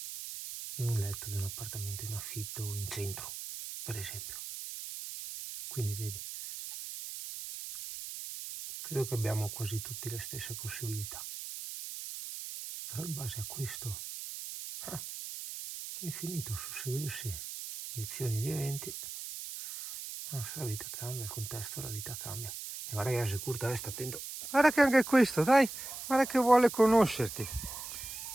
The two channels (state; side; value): noise; right; hiss, 8 dB below the sound